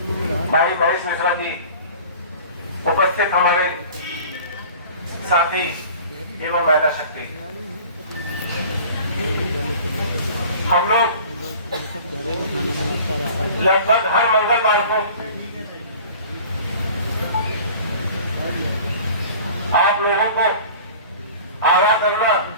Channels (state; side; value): inverted; both; correlation -0.44